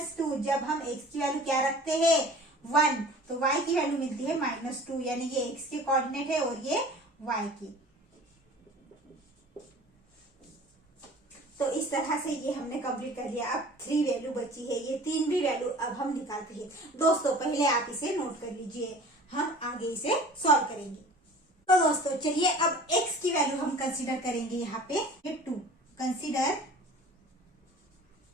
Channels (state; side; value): normal; both; correlation 0.44